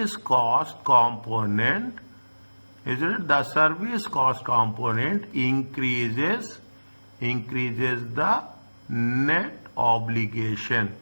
component, is it? The service cost component increases the net obligation.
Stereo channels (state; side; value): inverted; both; correlation -1.00